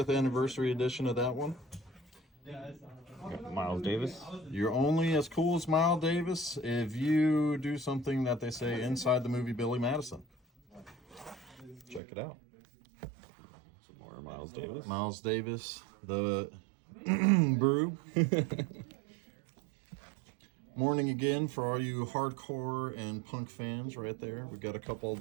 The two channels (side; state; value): left; drops out; at 12.0 s